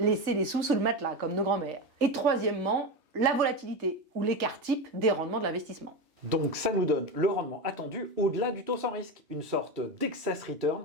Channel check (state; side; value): late; left; 3.2 ms